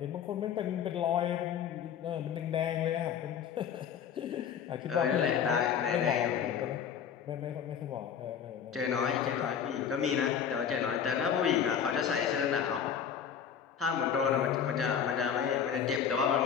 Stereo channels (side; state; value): right; quieter; 8.0 dB